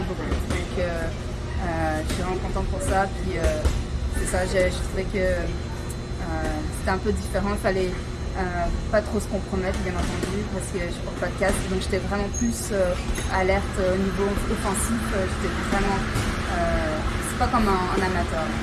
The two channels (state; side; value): identical; both; correlation 1.00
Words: beaucoup. Donc je suis vraiment contente pour ça. Puis c'est ça, je trouvais que c'était un peu différent, il fallait pas trop se compromettre bien entendu parce que je porte pas de casque, donc j'étais vraiment plus alerte au niveau offensif, j'étais vraiment... pas comme en amateur.